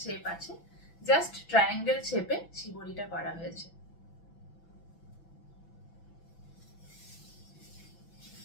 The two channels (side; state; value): right; late; 6.0 ms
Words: শেপ আছে, জাস্ট ট্রায়াঙ্গেল শেপে শিবরিটা করা হয়েছে।